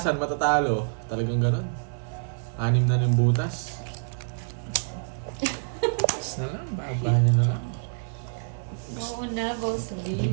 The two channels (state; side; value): silent; left; digital silence